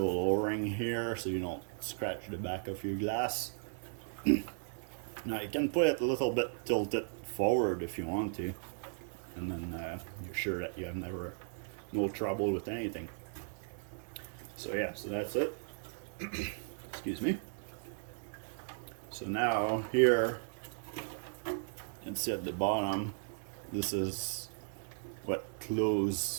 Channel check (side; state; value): left; silent; digital silence